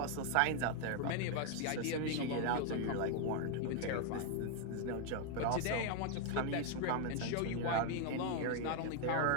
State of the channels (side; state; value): both; different; correlation 0.00